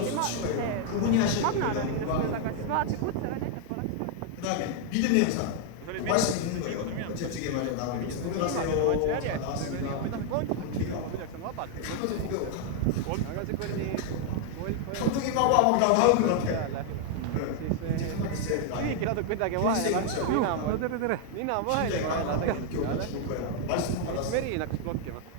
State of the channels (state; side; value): different; both; correlation 0.00